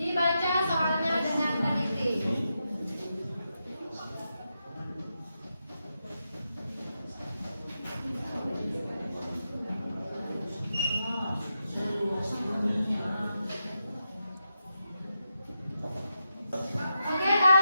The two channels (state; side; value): inverted; both; correlation -0.87